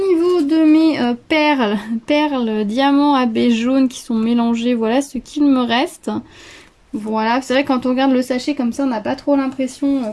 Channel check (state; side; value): identical; both; correlation 1.00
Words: niveau de mes perles diamants AB jaune qui sont mélangées, voilà ce qu'il me reste. Voilà, c'est vrai que quand on regarde le sachet comme ça, on n'a pas trop l'impression